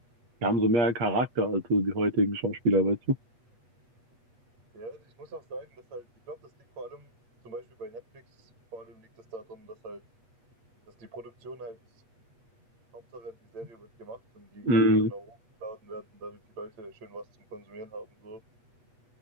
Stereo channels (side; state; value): left; late; 8.3 ms